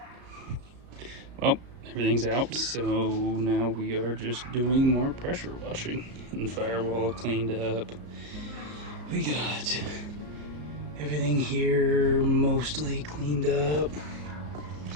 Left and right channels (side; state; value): left; late; 34 ms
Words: Well, everything's out, so now we are just doing more pressure washing and firewall cleaned up. We got everything here mostly cleaned up.